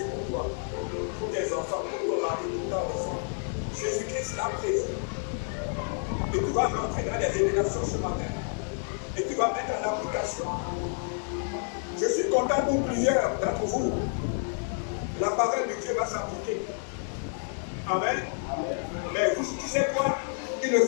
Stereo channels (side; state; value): right; silent; 58 dB below the other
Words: pour toi, pour tes enfants, pour ton mari, pour ta enfant. Jésus-Christ l'a prévu. Et tu vas rentrer dans les révélations ce matin. Et tu vas mettre en application. Je suis content pour plusieurs d'entre vous. La parole de Dieu va s'appliquer. Amen. Mais tu sais quoi? Il ne